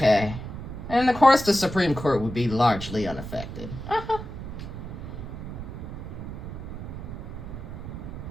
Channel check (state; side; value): noise; right; rumble, 9 dB below the sound